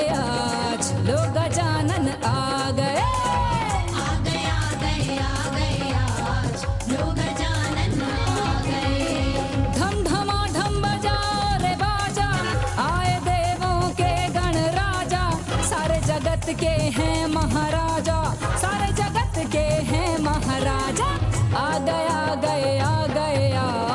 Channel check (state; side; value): identical; both; correlation 1.00